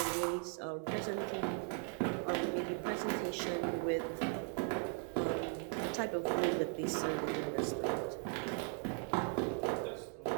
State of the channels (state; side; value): quieter; left; 40.0 dB